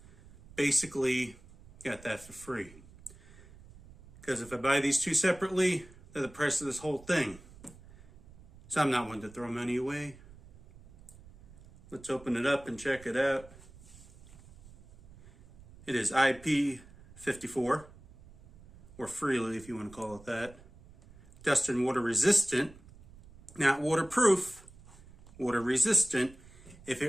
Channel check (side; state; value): right; noise; rumble, 22 dB below the sound